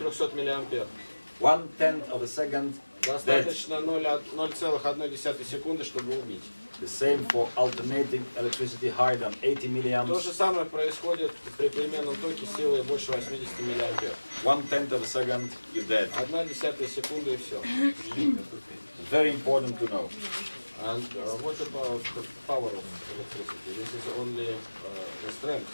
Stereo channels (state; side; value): inverted; both; correlation -1.00